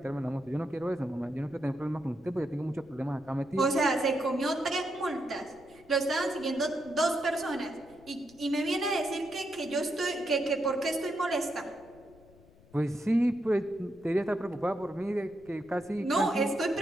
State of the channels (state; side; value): noise; left; rumble, 26 dB below the sound